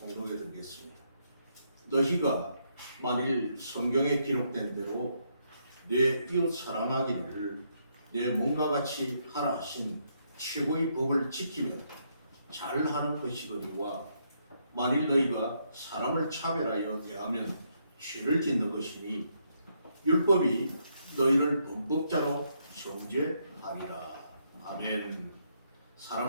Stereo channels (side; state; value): both; inverted; correlation -0.75